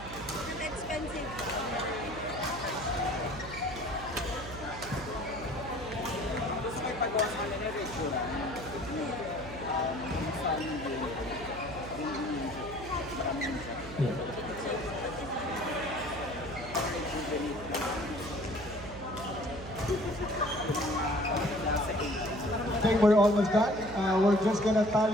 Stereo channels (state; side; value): noise; right; hum, 13 dB below the sound